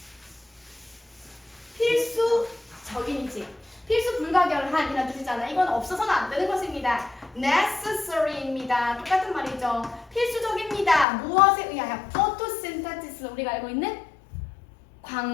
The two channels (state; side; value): drops out; right; at 11.1 s